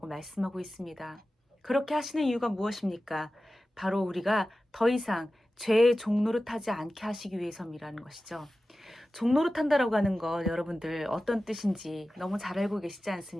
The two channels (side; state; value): both; normal; correlation 0.95